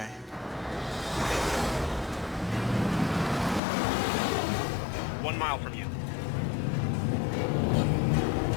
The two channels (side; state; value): right; drops out; at 3.6 s